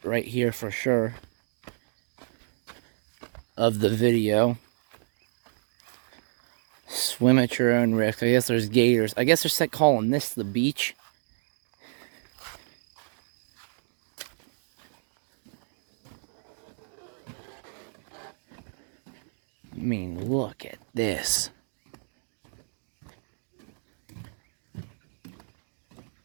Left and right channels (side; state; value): left; silent; digital silence